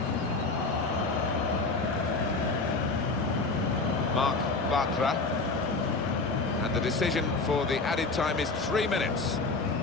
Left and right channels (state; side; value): quieter; right; 3.7 dB